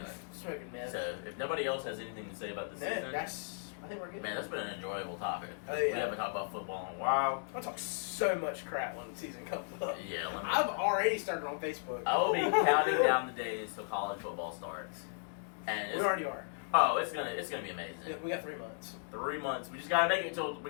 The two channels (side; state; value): right; silent; digital silence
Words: Smoking mess. so if nobody else has anything to say about the season, I think we're good. man, that's been an enjoyable topic. Oh, yeah. We haven't talked about football in a while. I'll talk so much crap when the season comes up. Yeah, I've already started on Facebook. I will be counting down the days till college football starts, and We already are. Oh, it's gonna be amazing. We got 3 months. 3 months. We just gotta make it